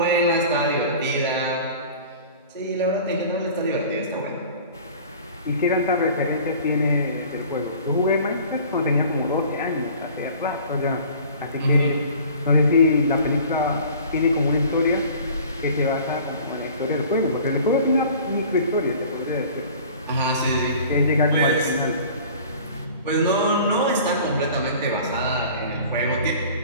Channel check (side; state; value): both; inverted; correlation -0.45